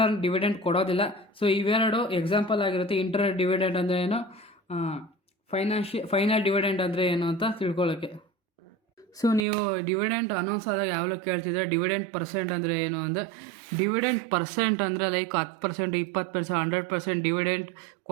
ಡಿವಿಡೆಂಟ್ ಕೊಡೋದಿಲ್ಲ. ಸೊ ಇವೆರಡು ಎಕ್ಸಾಂಪಲ್ ಆಗಿರುತ್ತೆ. ಇಂಟರ್ನಲ್ ಡಿವಿಡೆಂಟ್ ಅಂದರೆ ಏನು, ಫೈನಲ್ ಡಿವಿಡೆಂಟ್ ಅಂದರೆ ಏನು ಅಂತ ತಿಳ್ಕೊಳ್ಳೋಕ್ಕೆ. ಸೊ ನೀವು ಡಿವಿಡೆಂಟ್ ಅನೌನ್ಸ್ ಆದಾಗ ಯಾವಾಗಲೂ ಕೇಳ್ತಿದ್ರೆ ಡಿವಿಡೆಂಟ್ ಪರ್ಸೆಂಟ್ ಅಂದರೆ ಏನು ಅಂದರೆ, ಡಿವಿಡೆಂಟ್ ಪರ್ಸೆಂಟ್ ಅಂದರೆ ಲೈಕ್ 10%, 20%, 100% ಡಿವಿಡೆಂಟ್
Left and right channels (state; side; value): drops out; left; at 9.4 s